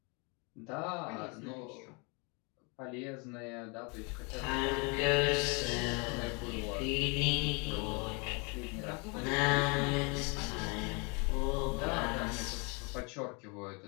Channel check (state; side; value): quieter; right; 31.6 dB